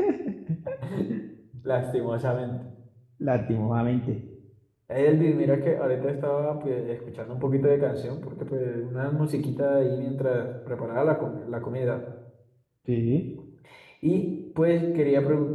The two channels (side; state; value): both; identical; correlation 1.00